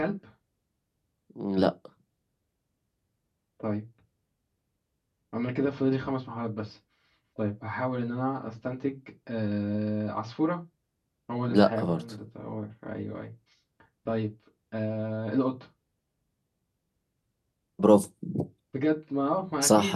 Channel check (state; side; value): identical; both; correlation 1.00